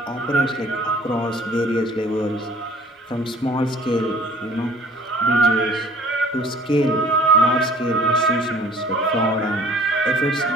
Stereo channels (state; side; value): normal; both; correlation 0.52